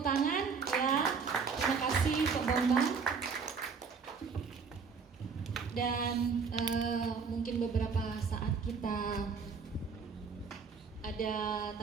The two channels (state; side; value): quieter; left; 5.5 dB